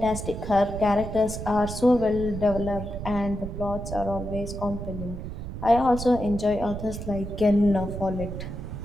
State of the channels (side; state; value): right; noise; rumble, 7 dB below the sound